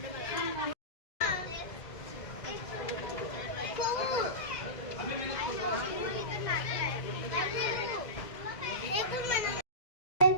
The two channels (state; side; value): late; right; 2.0 ms